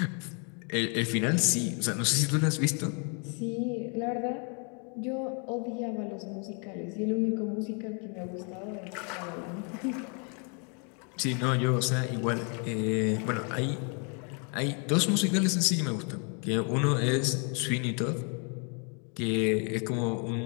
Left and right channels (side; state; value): right; quieter; 38.2 dB